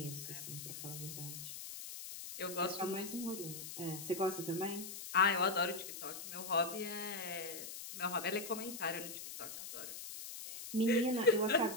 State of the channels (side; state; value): left; noise; hiss, 9 dB below the sound